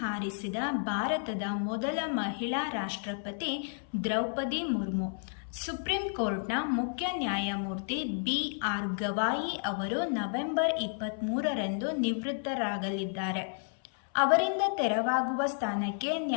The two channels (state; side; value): silent; right; 57 dB below the other